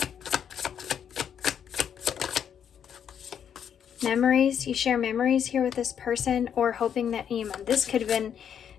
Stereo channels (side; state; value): right; quieter; 8.4 dB